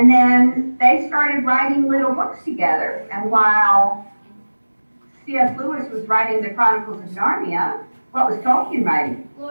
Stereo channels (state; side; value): inverted; both; correlation -1.00